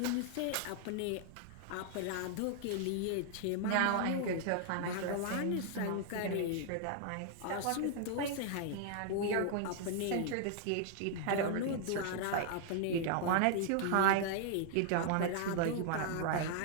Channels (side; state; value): both; different; correlation -0.01